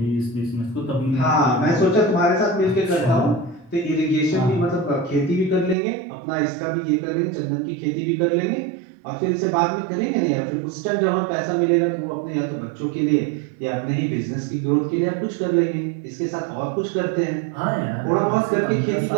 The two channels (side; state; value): left; drops out; at 5.8 s